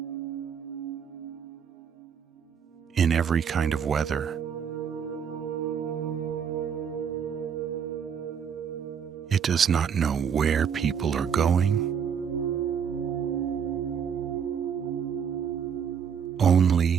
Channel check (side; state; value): left; quieter; 7.4 dB